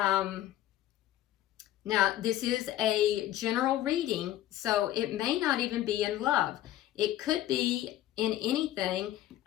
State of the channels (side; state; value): right; quieter; 13.7 dB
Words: this is a general reading, so it may not even be in love. It could be in anything,